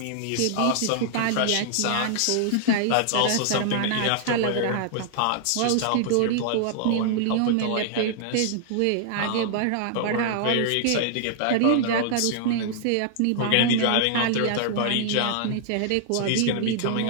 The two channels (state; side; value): different; both; correlation 0.00